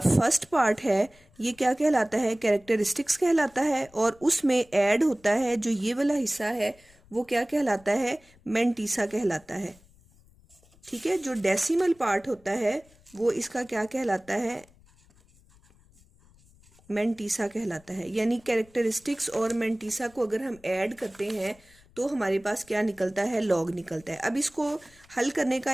पार्ट है ये क्या कहलाता है, कैरेक्टरिस्टिक्स कहलाता है, और उसमें ऐड होता है जो ये वाला हिस्सा है वो क्या कहलाता है, मेंटीसा कहलाता है। ठीक है, जो डेसिमल पार्ट होता है वो इसका क्या कहलाता है, मेंटीसा कहलाता है। यानी कैरेक्टरिस्टिक्स और मेंटीसा को अगर हम ऐड करते हैं तो हमारे पास क्या निकलता है, लॉग निकलता है। अब इसको हल करने का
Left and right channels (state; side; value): noise; left; rumble, 28 dB below the sound